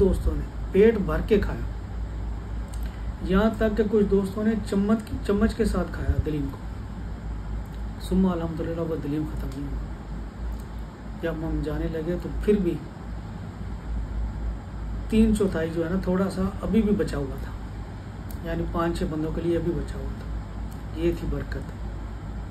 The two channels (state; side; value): identical; both; correlation 1.00